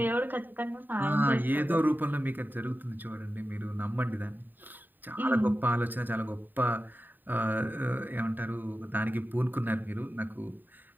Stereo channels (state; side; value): late; left; 0.090 ms